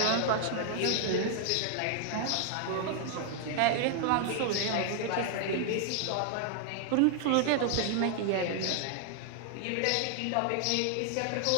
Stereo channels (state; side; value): different; both; correlation 0.00